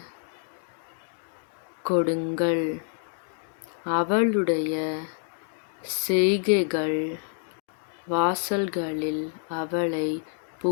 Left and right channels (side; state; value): right; silent; 60 dB below the other